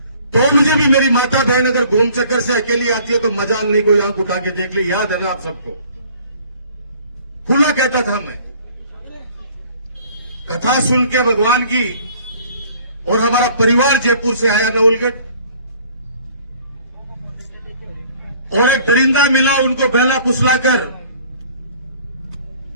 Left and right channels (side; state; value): both; inverted; correlation -0.54